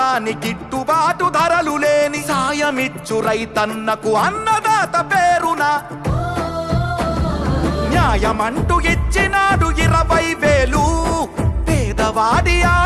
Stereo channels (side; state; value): both; identical; correlation 1.00